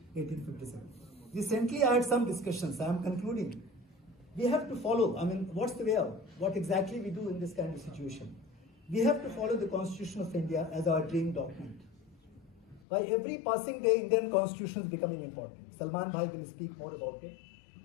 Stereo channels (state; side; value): drops out; right; at 12.8 s